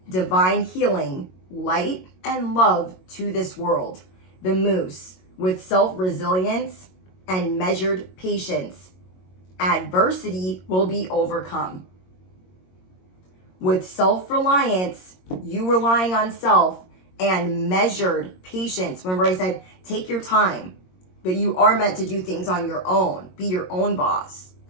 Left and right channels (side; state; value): right; late; 22 ms